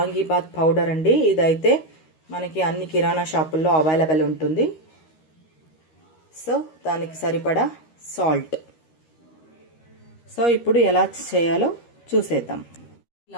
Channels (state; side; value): late; right; 13 ms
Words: పౌడర్ అండి. ఇదైతే మనకి అన్ని కిరాణా షాపుల్లో అవైలబుల్ ఉంటుంది. సో దానికి సరిపడా సాల్ట్. సో ఇప్పుడు ఎలా చేయాలో చూసేద్దాం.